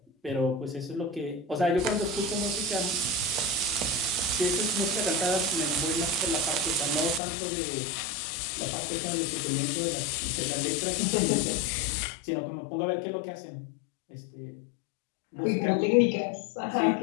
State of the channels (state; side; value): drops out; right; at 7.2 s